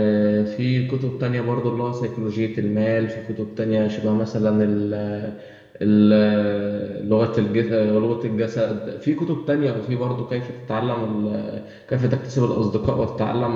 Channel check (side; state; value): both; identical; correlation 1.00